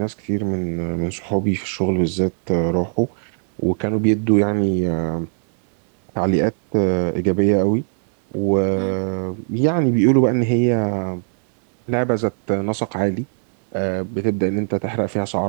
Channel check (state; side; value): silent; left; 66 dB below the other